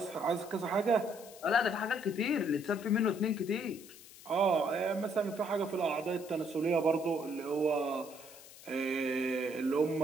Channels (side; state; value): left; noise; hiss, 19 dB below the sound